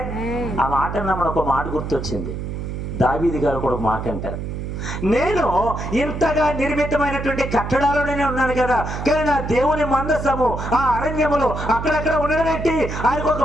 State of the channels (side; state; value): right; noise; hum, 5 dB below the sound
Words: ఆ మాట అన్నప్పుడు ఒక మాట గుర్తొచ్చింది. దావీదు గారు కూడా ఒక మాట అంటారు, నేను ఇంతగా నిర్మితమైనటువంటి కట్టడాల్లోనే ఉన్నాను కదా, కానీ నా దేవుని మందసము ఆ అరణ్యములో అక్కడక్కడ ఉండడానికి ఆయనకు